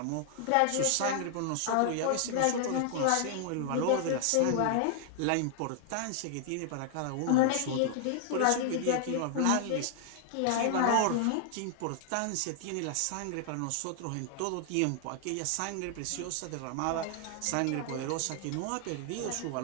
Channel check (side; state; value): both; different; correlation 0.00